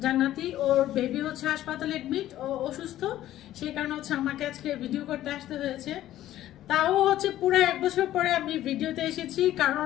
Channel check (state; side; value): quieter; right; 13.5 dB